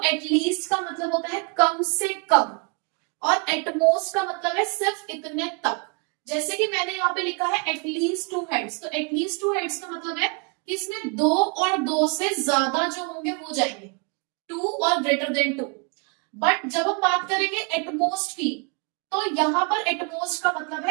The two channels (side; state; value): left; quieter; 34.9 dB